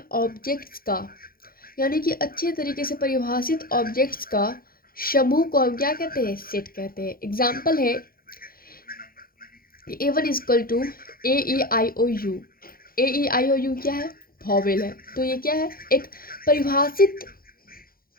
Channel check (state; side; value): late; right; 0.42 ms